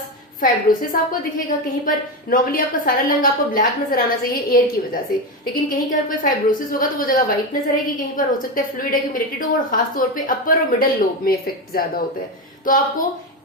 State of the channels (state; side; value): normal; both; correlation 0.15